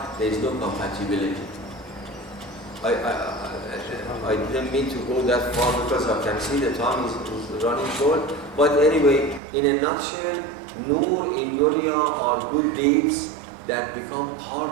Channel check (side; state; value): left; drops out; at 9.4 s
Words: There is no compatibility. I didn't mean to go that far because I can see the time is running short. But anyway, in a nutshell, nur in dunya are good deeds that become